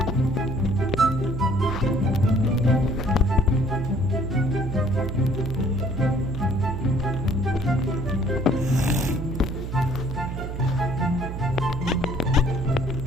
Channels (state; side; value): noise; right; hum, 6 dB below the sound